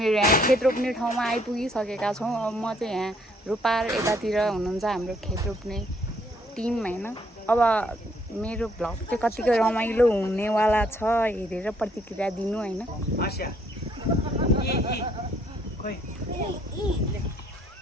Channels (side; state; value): both; normal; correlation 0.67